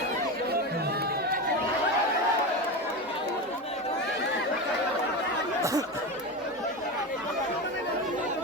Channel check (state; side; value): normal; both; correlation 0.20